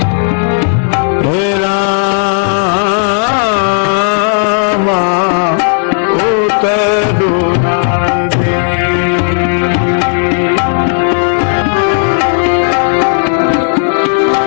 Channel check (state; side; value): silent; right; digital silence